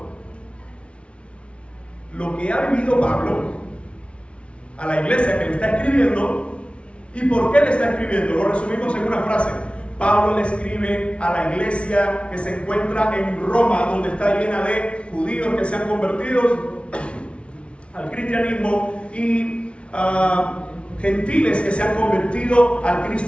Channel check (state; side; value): late; right; 0.060 ms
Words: lo que ha vivido Pablo a la iglesia que le está escribiendo. ¿Y por qué le está escribiendo? Lo resumimos en una frase: Pablo le escribe a la iglesia que se encuentra en Roma, donde está llena de judíos que se han convertido al cristianismo, y gentiles que se han convertido al